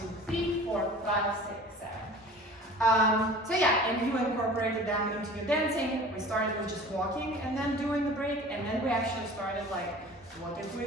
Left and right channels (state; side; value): normal; both; correlation 0.42